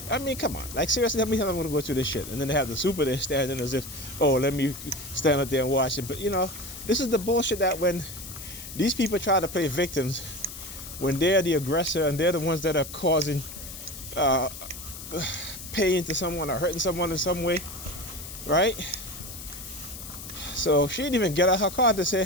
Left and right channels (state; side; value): noise; left; hiss, 12 dB below the sound